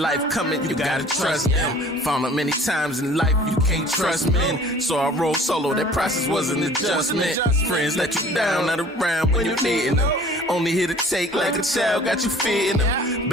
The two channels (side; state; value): both; normal; correlation 0.49